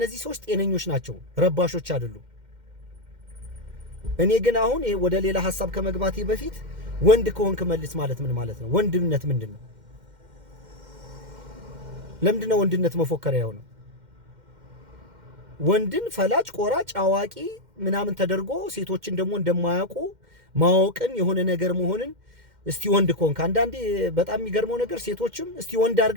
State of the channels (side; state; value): left; late; 2.1 ms